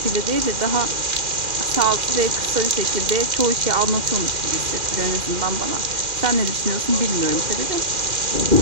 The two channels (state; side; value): late; left; 2.1 ms